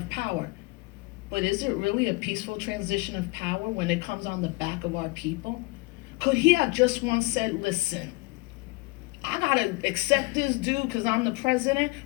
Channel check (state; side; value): quieter; right; 25.1 dB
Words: power. But is it really a peaceful transition of power when it comes on the back of our people? Could he have just once said, listen, I gotta accept this dude because I'm the president,